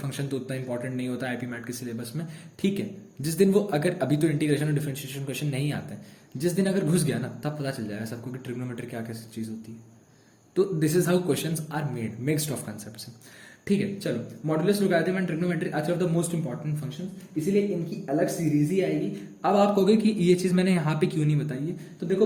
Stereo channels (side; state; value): both; identical; correlation 1.00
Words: तो उतना इंपॉर्टेंट नहीं होता आईपी मैट के सिलेबस में, ठीक है। जिस दिन वो अगर अभी तो इंटीग्रेशन और डिफरेंशिएशन क्वेश्चन नहीं आते, जिस दिन अगर घुस गया ना तब पता चल जाएगा सबको कि ट्रिग्नोमेट्री क्या कैसी चीज होती है। तो this is how questions are made, mixed of concepts. ठीक है, चलो modulus, logarithm and trigonometry are of the most important function, इसीलिए इनकी अलग सीरीज ही आएगी। अब आप कहोगे कि ये चीज मैंने यहाँ पे क्यों नहीं बताई है, तो